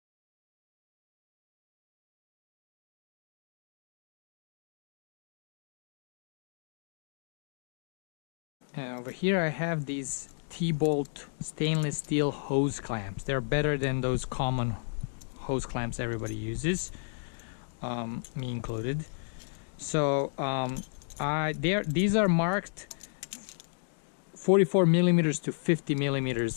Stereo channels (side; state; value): right; silent; digital silence